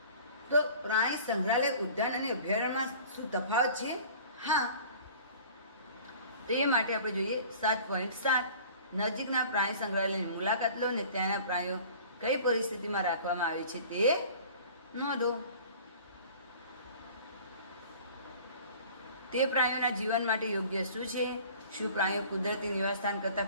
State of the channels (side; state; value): both; inverted; correlation -0.45